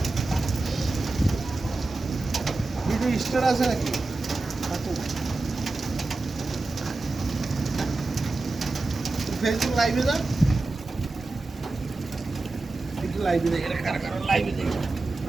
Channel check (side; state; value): left; quieter; 3.3 dB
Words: ভিডিও স্টোর আছে নাকি? ফেসবুক লাইভে যা, একটু লাইভে দেখে, কারা কারা লাইভে দেখে